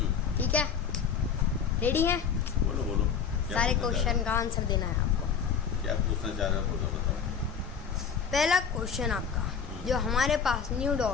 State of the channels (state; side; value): quieter; right; 6.8 dB